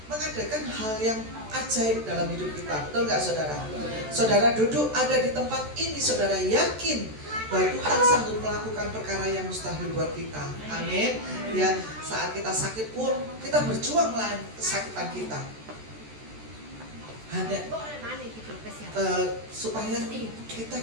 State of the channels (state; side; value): late; left; 14 ms